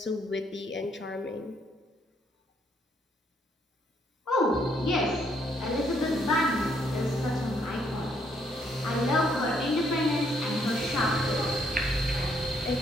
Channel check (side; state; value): both; normal; correlation 0.71